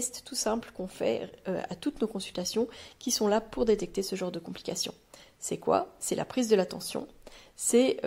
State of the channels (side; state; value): both; identical; correlation 1.00